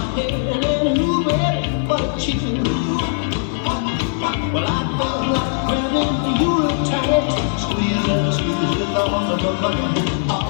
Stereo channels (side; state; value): right; silent; 56 dB below the other